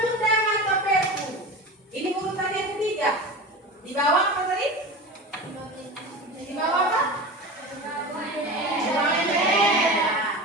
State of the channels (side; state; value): both; normal; correlation 0.30